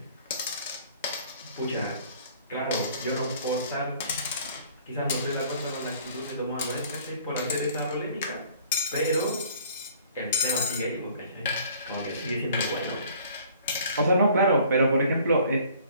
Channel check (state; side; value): inverted; both; correlation -0.55